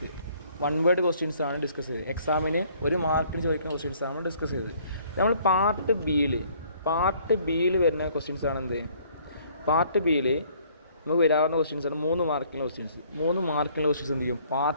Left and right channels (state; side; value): inverted; both; correlation -0.60